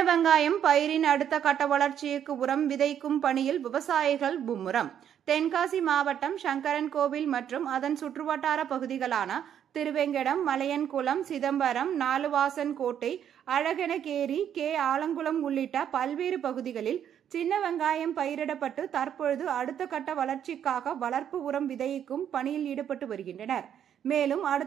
வெங்காயம் பயிரின் அடுத்த கட்ட வளர்ச்சிக்கு உரம் விதைக்கும் பணியில் விவசாயிகள் மும்முரம். தென்காசி மாவட்டம் சங்கரன்கோவில் மற்றும் அதன் சுற்றுவட்டார பகுதிகளான திருவேங்கடம், மலையன்குளம், சிதம்பரம், நாலுவாசன்கோட்டை, அழகனகேரி, ஆலங்குளம் உள்ளிட்ட பல்வேறு பகுதிகளில் சின்ன வெங்காயம் பயிரிடப்பட்டு தற்பொழுது அடுத்த கட்ட வளர்ச்சிக்காக வளர்ப்பு உரம் விதைக்கும் பணியில் ஈடுபட்டு வருகின்றனர். மேலும்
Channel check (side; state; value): left; quieter; 9.4 dB